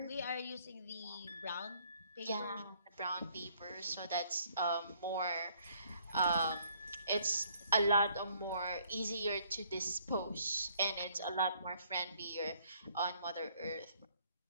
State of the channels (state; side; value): inverted; both; correlation -0.63